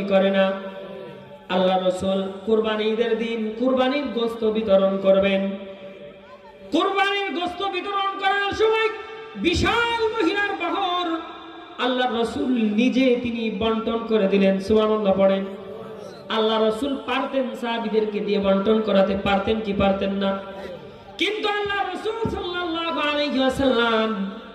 করে না? আল্লাহ রাসূল কুরবানির দিন কুরবানির গোশত বিতরণ করবেন। কুরবানির গোশত বিতরণ করার সময় বিশাল মহিলার বহর আল্লাহ রাসূল নিজে তিনি বন্টন করে দিলেন। সুবহানাল্লাহ পড়েন। আল্লাহ রাসূল পারতেন সাহাবীদেরকে দিয়ে বন্টন করাতে, পারতেন কি পারতেন না? কিন্তু আল্লাহ রাসূল সাল্লাল্লাহু আলাইহি ওয়াসাল্লাম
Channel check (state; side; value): identical; both; correlation 1.00